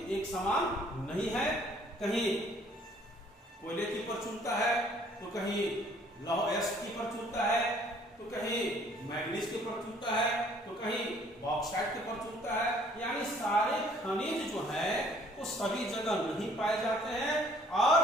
एक समान नहीं है। कहीं कोयले की प्रचुरता है तो कहीं लौह अयस्क की प्रचुरता है, तो कहीं मैग्नीज की प्रचुरता है, तो कहीं बॉक्साइट की प्रचुरता है। यानी सारे खनिज जो है वो सभी जगह नहीं पाए जाते हैं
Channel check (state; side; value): normal; both; correlation 0.59